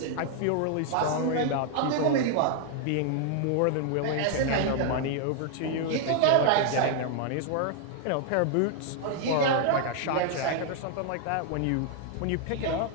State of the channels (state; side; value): different; both; correlation 0.00